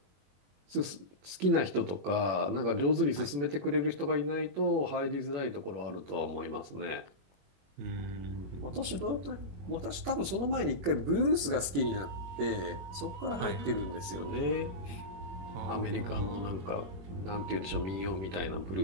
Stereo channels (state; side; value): late; left; 21 ms